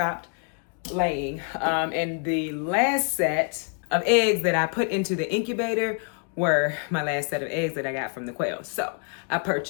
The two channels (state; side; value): quieter; right; 39.1 dB